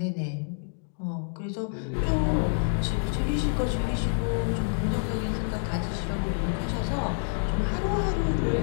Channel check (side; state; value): right; silent; digital silence